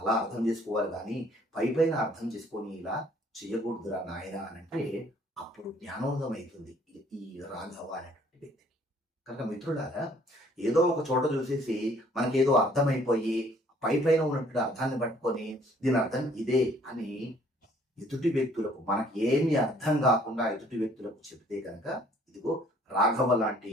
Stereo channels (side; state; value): both; normal; correlation 0.59